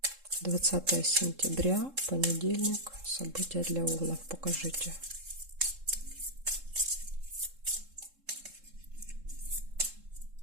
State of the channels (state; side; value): late; left; 3.7 ms